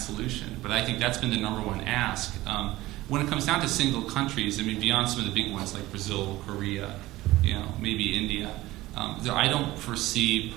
solution. But I think that's been the number one ask. When it comes down to single countries, I mean, beyond some of the big ones like Brazil, Korea, maybe India, I don't foresee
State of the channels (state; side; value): quieter; left; 17.7 dB